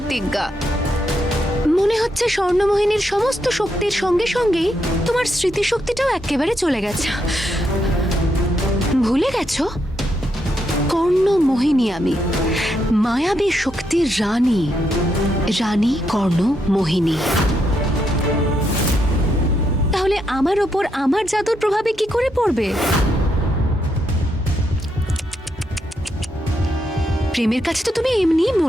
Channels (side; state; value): both; normal; correlation 0.79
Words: মনে হচ্ছে স্বর্ণমোহিনীর সমস্ত শক্তির সঙ্গে সঙ্গেই তোমার স্মৃতিশক্তিটাও একেবারে চলে গেছে। ভুলে গেছো কর্ণমোহিনী আমি, মায়াবী শক্তির রানী, রানী কর্ণমোহিনী। তাহলে আমার ওপর আমার জাদুর প্রভাবে কি করে পড়বে? প্রেমের কাছে তো তুমি এমনিই